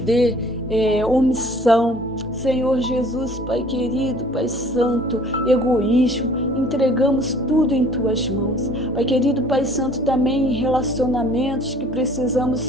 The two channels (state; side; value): normal; both; correlation 0.53